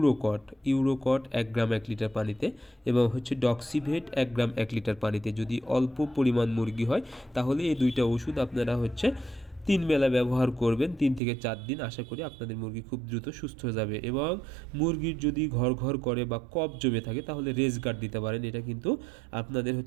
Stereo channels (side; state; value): left; drops out; at 11.2 s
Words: 1 গ্রাম 1 লিটার পানিতে, এবং ডক্সিভেট 1 গ্রাম 1 লিটার পানিতে। যদি অল্প পরিমাণ মুরগি হয় তাহলে এই দুইটা ওষুধ আপনারা 3 বেলা ব্যবহার করবেন, 3 থেকে 4 দিন। আশা করি আপনাদের মুরগি খুব দ্রুত সুস্থ হয়ে যাবে। এবং মুরগির যদি ঘর ঘর করে বা কফ জমে থাকে তাহলে রেজ গার্ড দিতে পারেন। এটা কিন্তু আপনাদের